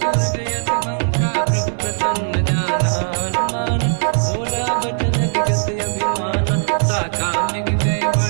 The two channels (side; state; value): left; silent; 67 dB below the other